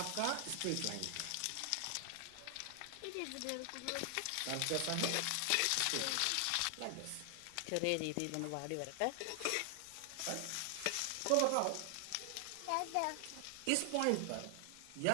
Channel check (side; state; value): both; different; correlation 0.00